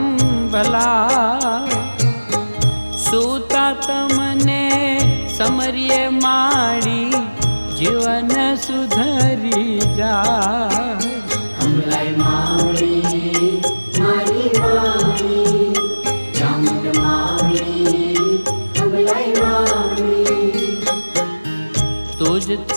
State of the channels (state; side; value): inverted; both; correlation -1.00